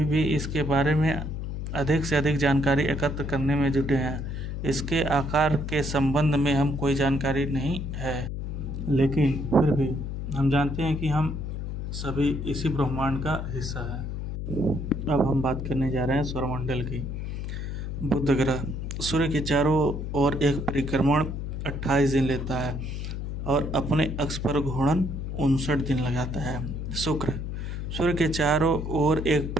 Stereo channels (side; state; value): left; noise; hum, 5 dB below the sound